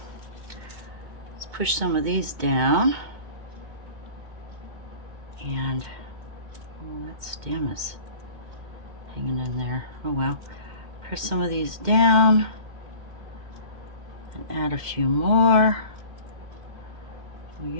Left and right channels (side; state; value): left; late; 2.1 ms